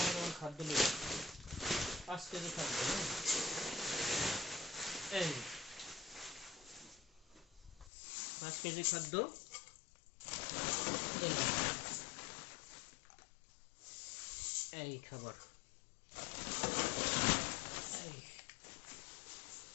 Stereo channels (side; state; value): right; drops out; at 7.9 s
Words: খাদ্য নেব, 5 কেজি খাদ্য। এই 5 কেজি খাদ্য, এই খাবার,